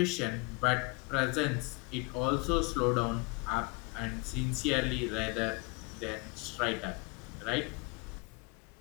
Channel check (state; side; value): quieter; right; 27.9 dB